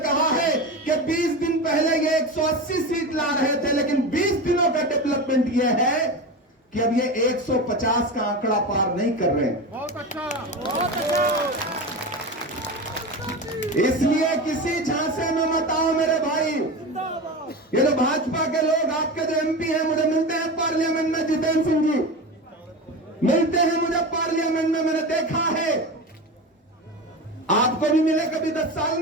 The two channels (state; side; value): normal; both; correlation 0.25